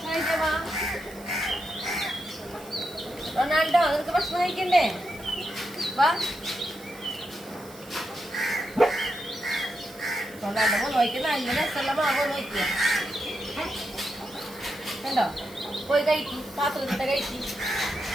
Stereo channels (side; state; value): right; noise; hiss, 20 dB below the sound